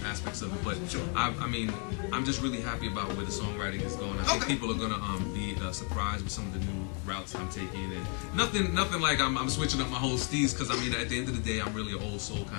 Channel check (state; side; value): quieter; right; 39.2 dB